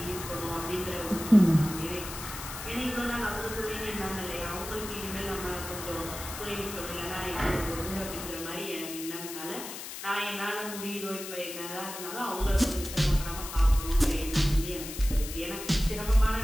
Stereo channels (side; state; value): left; noise; hiss, 9 dB below the sound